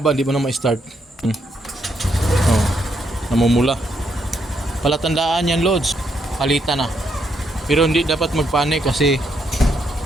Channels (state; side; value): normal; both; correlation 0.77